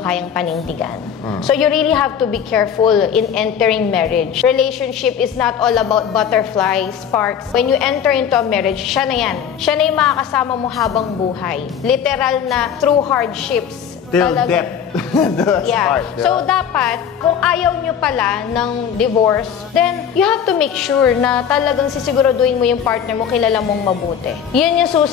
panindigan. So you really have to be careful in entering marriage. Relationship is not all about butterflies, sparks. When you enter into a marriage, siya na yan. Siya na yung makakasama mo habang buhay. Literal na through hardships. Till death. Yeah. So, dapat, kung ayaw nyo pala ng divorce, then you have to make sure na talagang sisiguraduhin mo yung partner mo, kilala mong mabuti. Yun yung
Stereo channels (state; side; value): quieter; right; 8.2 dB